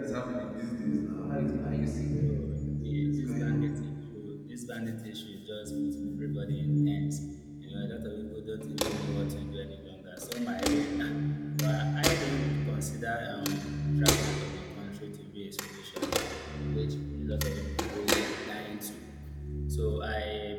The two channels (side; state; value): both; identical; correlation 1.00